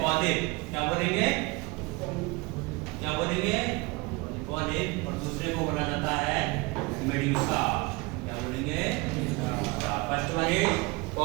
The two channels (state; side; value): quieter; left; 24.7 dB